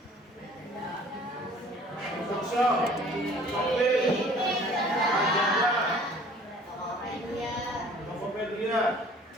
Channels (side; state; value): both; normal; correlation 0.52